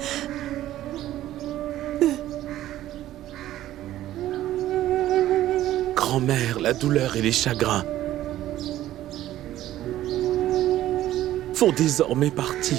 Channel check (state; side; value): quieter; left; 13.7 dB